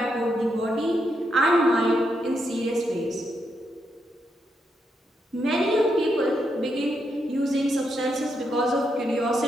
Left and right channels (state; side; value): normal; both; correlation 0.81